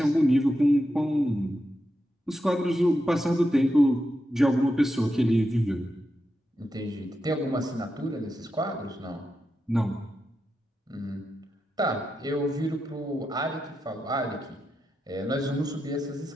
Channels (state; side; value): normal; both; correlation 0.87